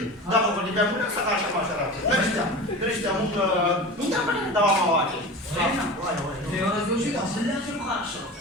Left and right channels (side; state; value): both; normal; correlation 0.32